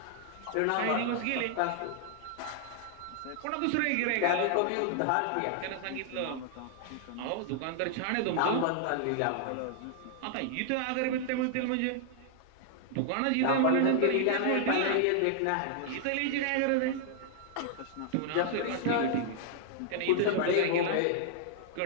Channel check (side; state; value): both; different; correlation -0.01